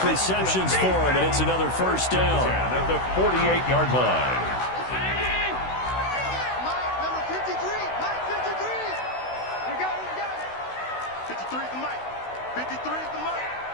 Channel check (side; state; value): right; late; 16 ms